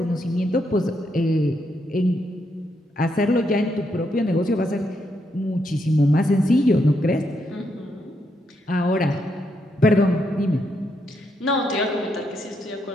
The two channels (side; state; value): both; normal; correlation 0.79